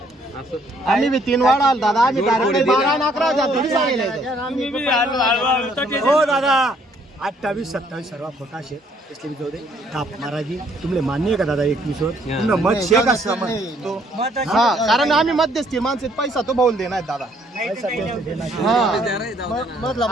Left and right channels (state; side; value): normal; both; correlation 0.65